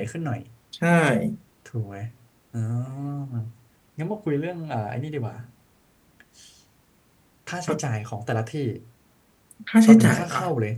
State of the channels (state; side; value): identical; both; correlation 1.00